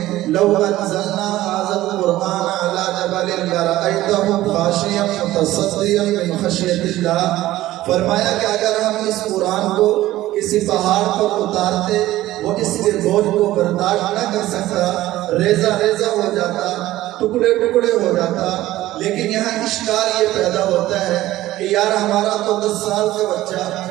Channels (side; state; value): left; quieter; 15.6 dB